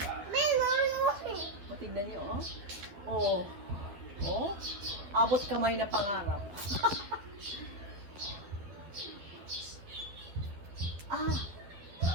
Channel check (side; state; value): left; late; 12 ms